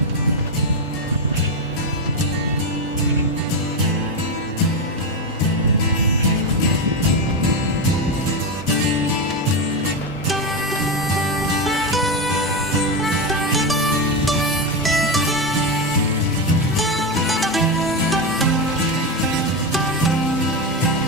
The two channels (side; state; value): both; normal; correlation 0.12